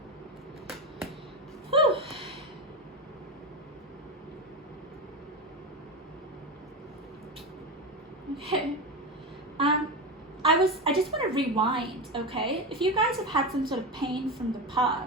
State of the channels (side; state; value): both; normal; correlation 0.18